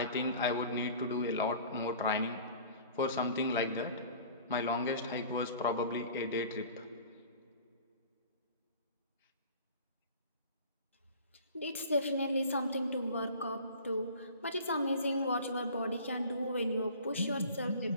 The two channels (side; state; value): both; inverted; correlation -0.44